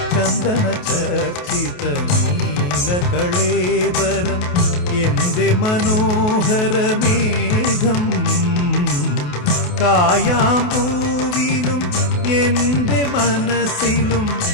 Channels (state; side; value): late; right; 28 ms